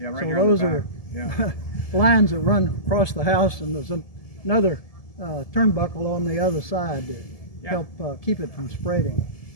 right so here those on the are back. lines that run across the house, and there's another turnbuckle on the other side to help keep it from spreading.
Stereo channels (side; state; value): right; late; 1.7 ms